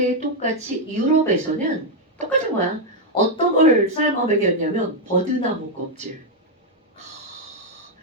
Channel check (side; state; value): both; normal; correlation 0.01